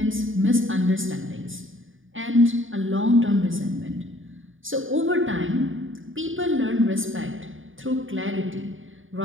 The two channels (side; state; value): left; late; 0.58 ms